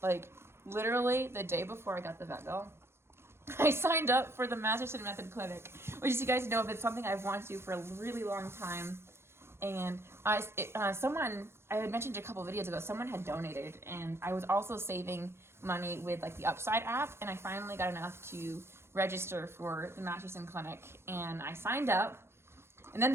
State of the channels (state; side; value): late; left; 0.12 ms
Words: literally the day before I got the vet bill, I signed up for the Masterson Method Clinic, which, as you guys know, it's something I've wanted to do for a really long time. And someone, I had mentioned a couple videos ago, someone had donated, and I was also saving money with like the Upside app, and I finally got enough to register for the Masterson Clinic, and I signed up. And then